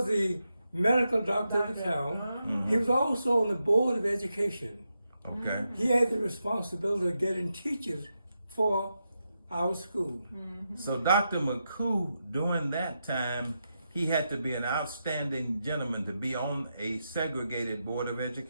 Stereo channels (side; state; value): both; inverted; correlation -0.86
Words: medical doctor of the town. Mm-hmm. He was also on the board of education. Okay. He had the responsibility of getting teachers for our school. Mm-hmm. So Dr. McCoo, during that time, he had to be an outstanding gentleman to be on a segregated board of